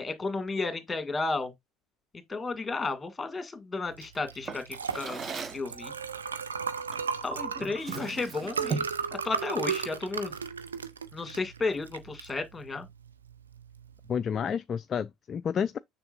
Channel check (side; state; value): both; normal; correlation 0.47